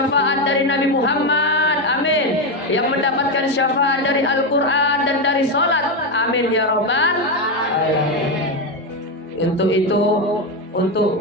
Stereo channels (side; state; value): both; normal; correlation 0.10